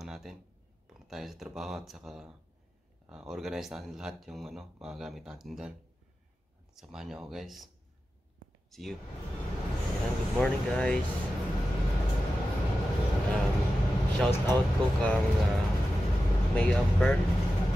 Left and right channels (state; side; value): normal; both; correlation 0.92